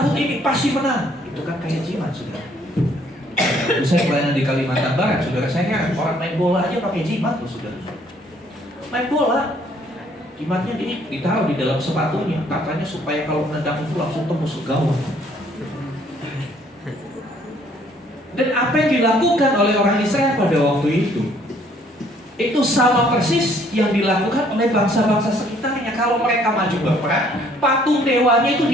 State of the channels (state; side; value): normal; both; correlation 0.63